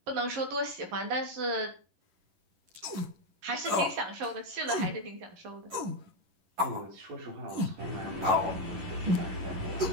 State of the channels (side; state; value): left; late; 11 ms